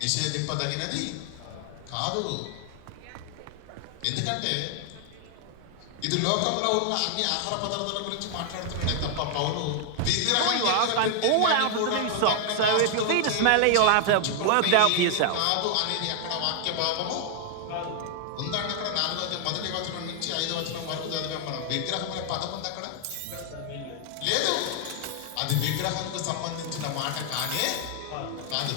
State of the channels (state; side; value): different; both; correlation 0.00